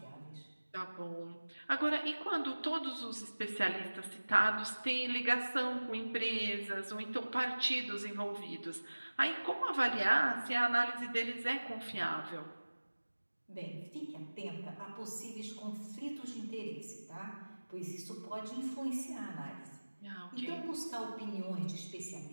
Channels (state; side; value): inverted; both; correlation -1.00